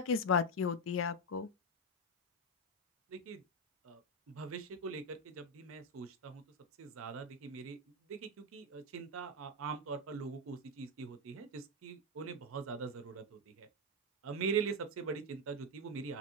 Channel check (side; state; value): both; normal; correlation 0.05